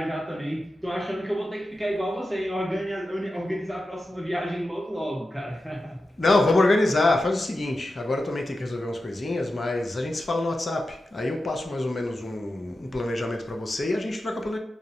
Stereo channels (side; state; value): both; normal; correlation 0.92